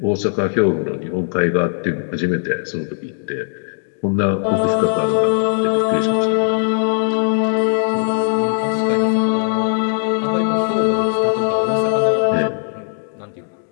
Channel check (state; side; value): silent; right; digital silence